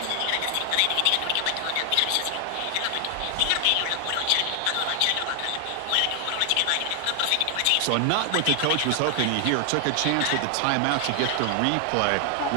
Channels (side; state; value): both; different; correlation 0.00